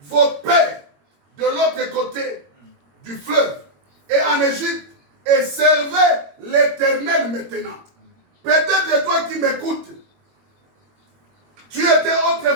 vos pères de l'autre côté du fleuve et en Égypte et servez l'Éternel maintenant. Peut-être toi qui m'écoutes, tu étais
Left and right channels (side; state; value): left; late; 22 ms